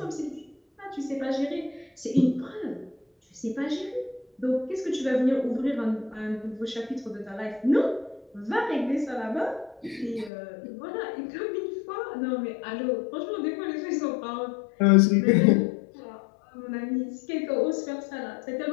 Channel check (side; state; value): right; drops out; at 10.3 s